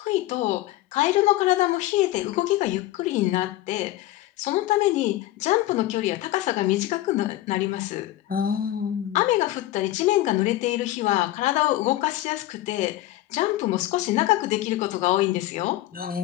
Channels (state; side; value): quieter; right; 15.3 dB